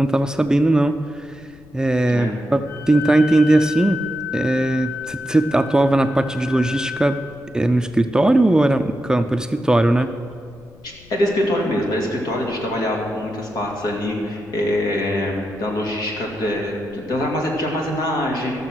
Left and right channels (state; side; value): noise; left; rumble, 24 dB below the sound